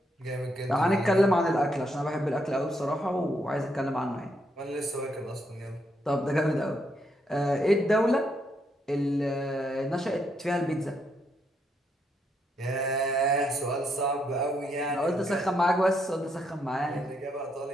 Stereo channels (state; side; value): normal; both; correlation 0.77